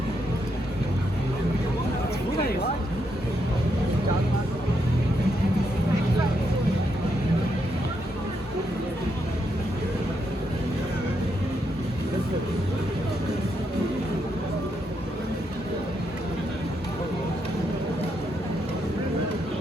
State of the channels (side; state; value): both; normal; correlation 0.80